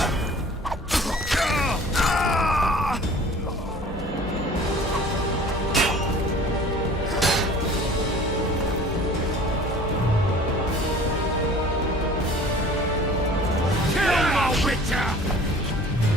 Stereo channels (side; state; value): both; normal; correlation 0.47